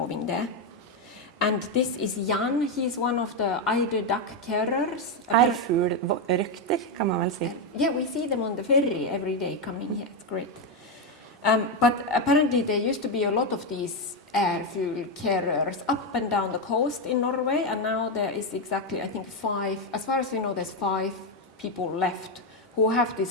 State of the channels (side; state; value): both; normal; correlation 0.06